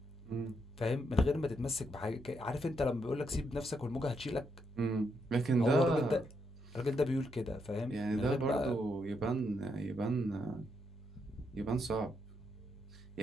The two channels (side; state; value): both; normal; correlation 0.79